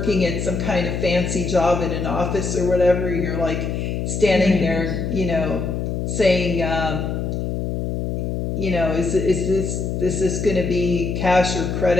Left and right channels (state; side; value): noise; left; hum, 2 dB below the sound